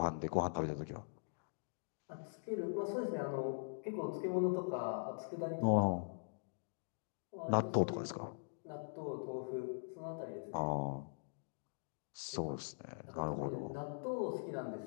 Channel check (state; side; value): silent; right; digital silence